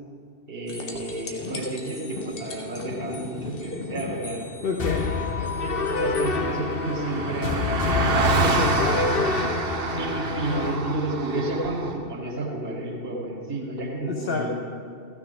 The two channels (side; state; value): right; late; 2.7 ms